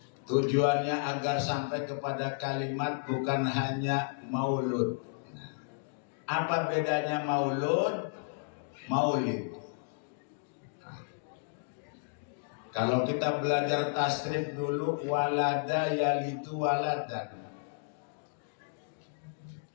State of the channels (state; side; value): silent; right; digital silence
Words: tujuannya agar sampai kepada kalimat bukan hanya maulud. Nah, apa bedanya maulud, maulid? Kalau kita belajar tasrif dulu, walada yalidu waladan.